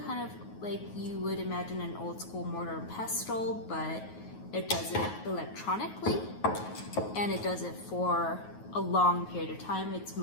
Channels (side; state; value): right; late; 9.4 ms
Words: kind of like you would imagine an old school mortar and pestle, but it does it electronically, and it does it for a long period of time. Its